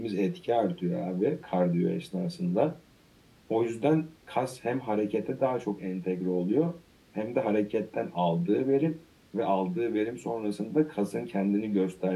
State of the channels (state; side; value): identical; both; correlation 1.00